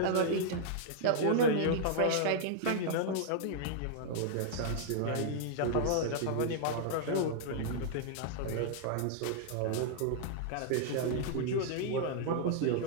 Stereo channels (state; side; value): different; both; correlation -0.01